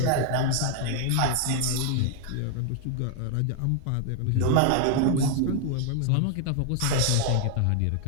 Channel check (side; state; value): both; different; correlation 0.00